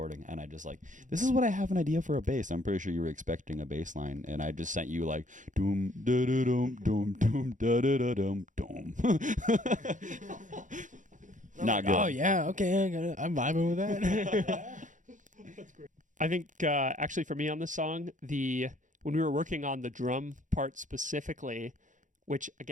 and I just like, this is what I have an idea for a bass. I'm pretty sure you were expecting a bass line, and I just sent you like doom da da dum dum dum da da da dum dum. Not good. Oh yeah, okay, I got it. I'm vibing with that. I think actually for me on this song, when we were working on the drum part specifically, which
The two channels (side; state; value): left; late; 0.37 ms